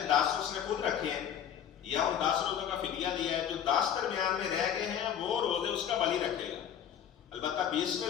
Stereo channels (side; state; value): right; quieter; 9.1 dB